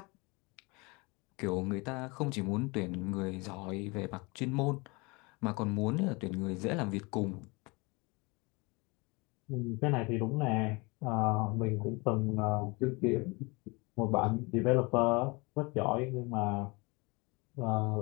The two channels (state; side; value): quieter; right; 26.9 dB